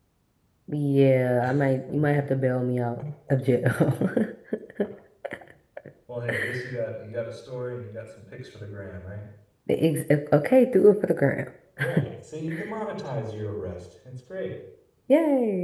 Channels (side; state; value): both; identical; correlation 1.00